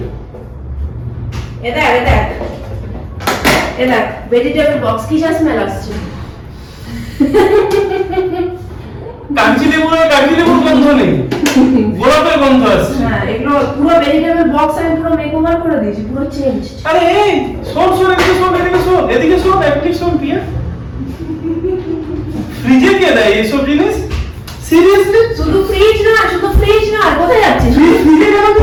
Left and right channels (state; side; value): identical; both; correlation 1.00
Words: দেখ ভেজিটেবল বক্স, কি স্মেল আসছে? কাঞ্চি লেবুর গন্ধ নেই, গোলাপের গন্ধ আসছে। হ্যাঁ, এগুলো পুরো ভেজিটেবল বক্স আমি পুরো মেকওভার করে দিয়েছি, পুরো চেঞ্জ। আরে এই শোন, এদিকে শোন অ্যাক্টিভ শোন পিয়া। ফ্রিজে কে দেয় এইসব জিনিস? সিরিয়াসলি? শুধু ফ্রিজ না, কোথায় যাচ্ছিস? ফ্রিজে কেন